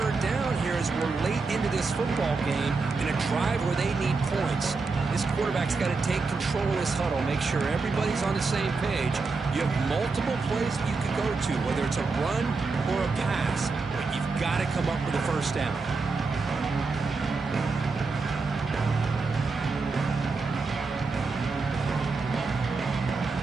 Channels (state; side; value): quieter; left; 4.2 dB